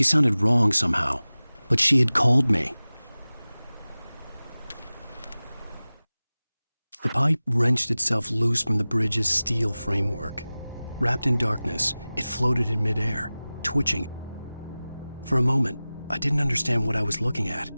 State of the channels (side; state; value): both; inverted; correlation -0.98